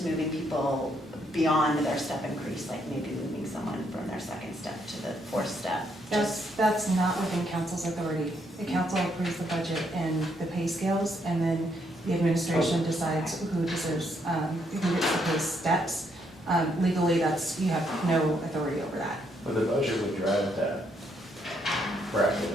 moving people beyond their step increase, like maybe moving someone from their 2nd step to the 4th step. That's not within council's authority. The council approves the budget and the pay scales, and then the administration decides who deserves, who gets the pay steps. Legally, you have no authority over that. But the budget would drive that bracket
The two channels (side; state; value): both; normal; correlation 0.73